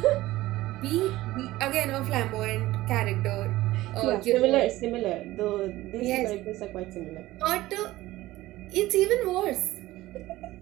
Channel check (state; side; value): quieter; left; 17.1 dB